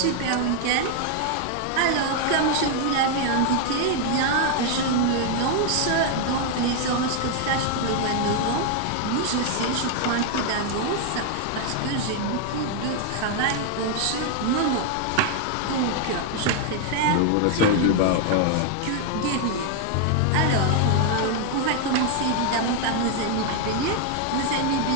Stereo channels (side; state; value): both; different; correlation 0.00